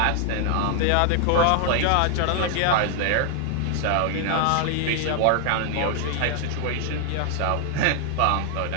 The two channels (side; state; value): both; different; correlation 0.00